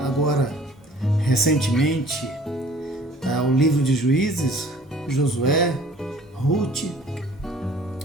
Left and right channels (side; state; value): both; normal; correlation 0.52